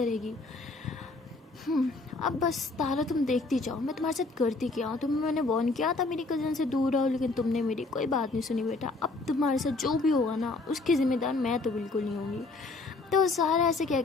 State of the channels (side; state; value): right; quieter; 3.4 dB